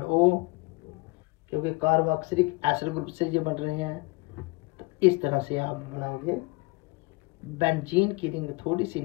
O, क्योंकि कार्बोक्सिलिक एसिड ग्रुप से ये बन रहे हैं। तो इस तरह से आप बनाओगे बेंजीन की रिंग थोड़ी सी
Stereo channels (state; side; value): quieter; right; 25.0 dB